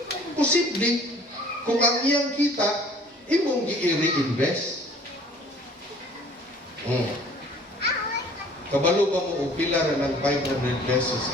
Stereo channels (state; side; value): normal; both; correlation 0.52